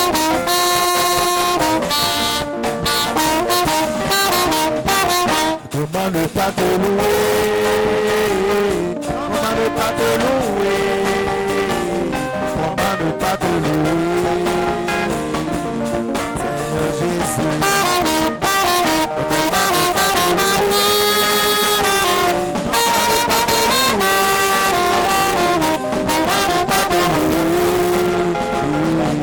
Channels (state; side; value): identical; both; correlation 1.00